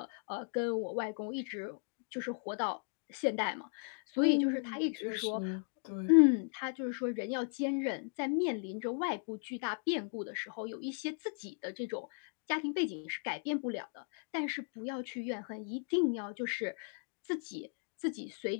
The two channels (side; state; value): right; silent; 53 dB below the other